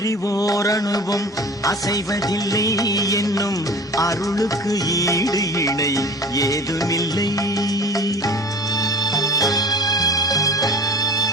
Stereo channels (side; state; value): both; normal; correlation 0.40